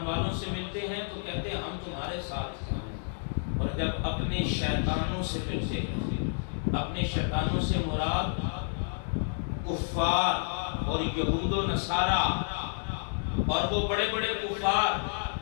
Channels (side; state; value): right; silent; 58 dB below the other